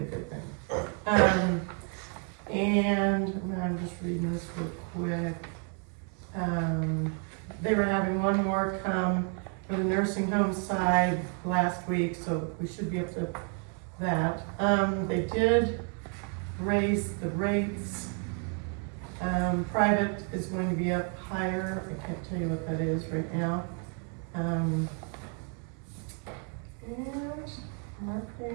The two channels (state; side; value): quieter; left; 39.8 dB